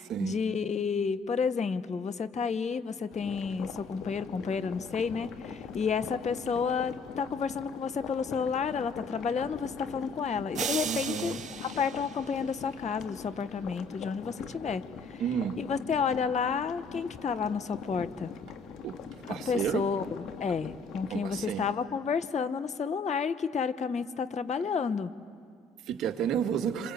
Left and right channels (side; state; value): right; quieter; 3.5 dB